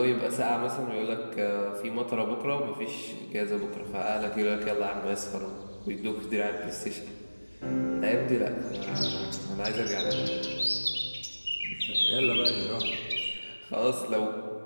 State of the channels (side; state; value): both; inverted; correlation -1.00